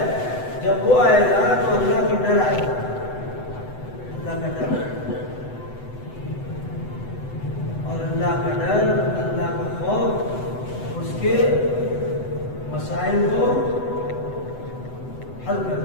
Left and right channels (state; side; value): late; right; 8.0 ms